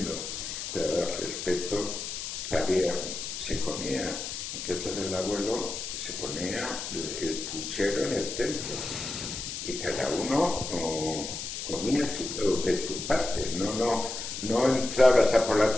pero el respeto que se comía en casa del abuelo, se ponía el puchero en el centro y cada uno comía de su parte, no entrabas a por la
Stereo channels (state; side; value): noise; left; hiss, 6 dB below the sound